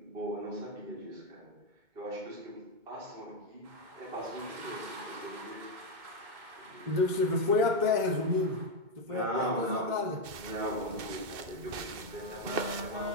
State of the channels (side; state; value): left; late; 2.2 ms